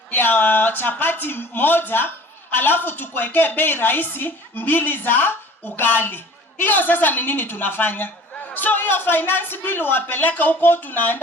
ya chapati moja, alafu tukuwekee bei rahisi 2 za ugali. Hiyo sasa ni nini tunafanya? So hiyo finance bill wapeleka huko,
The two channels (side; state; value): both; normal; correlation 0.47